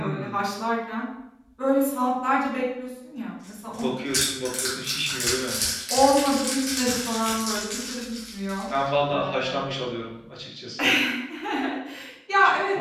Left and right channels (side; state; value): both; identical; correlation 1.00